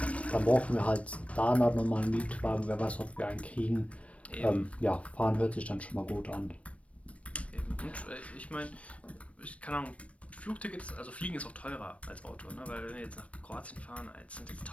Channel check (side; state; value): right; late; 0.064 ms